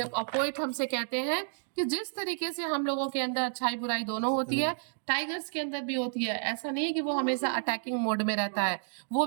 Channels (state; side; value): silent; left; digital silence